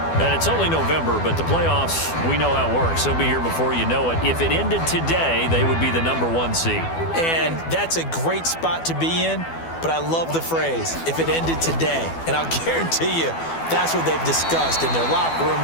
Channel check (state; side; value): late; right; 12 ms